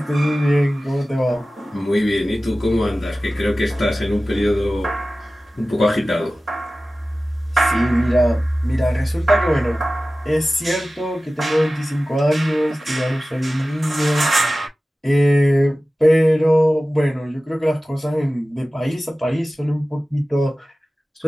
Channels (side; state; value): both; normal; correlation 0.96